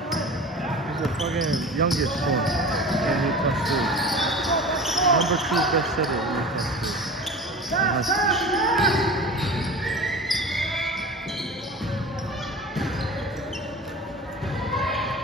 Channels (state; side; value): normal; both; correlation 0.36